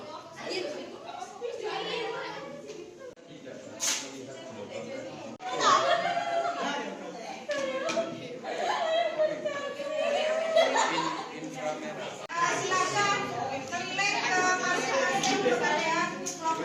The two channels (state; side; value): identical; both; correlation 1.00